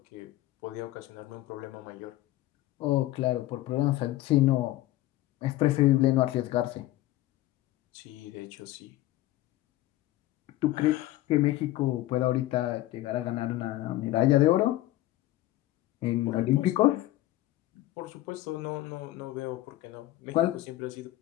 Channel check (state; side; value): quieter; right; 15.9 dB